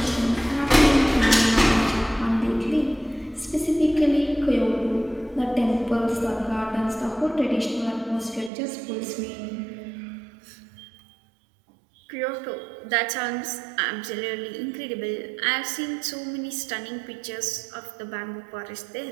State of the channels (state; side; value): drops out; left; at 8.5 s